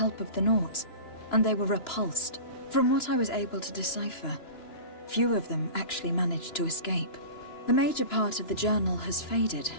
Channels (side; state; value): right; late; 2.9 ms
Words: of the Nords, and they were repulsed. From what I was able to decipher, few of them actually managed to escape. The major part of the journal has faded.